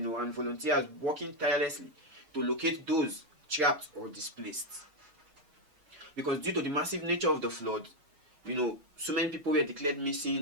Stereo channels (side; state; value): left; late; 6.5 ms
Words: volunteers working tirelessly to locate those trapped or displaced. Because due to the massive nature of the flood, so many people were declared